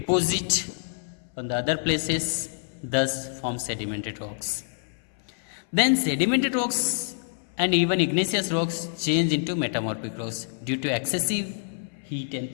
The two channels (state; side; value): silent; right; 59 dB below the other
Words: on the other places, thus form sedimentary rocks. Then sedimentary rocks and even igneous rocks change into metamorphic rocks due to excessive heat